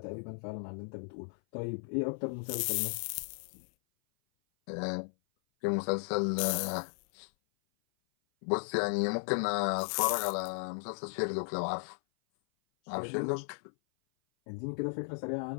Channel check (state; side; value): silent; right; 54 dB below the other